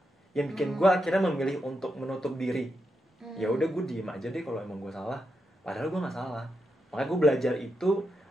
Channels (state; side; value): normal; both; correlation 0.85